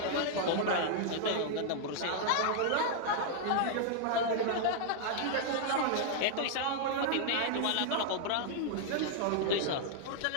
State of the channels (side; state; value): both; different; correlation -0.01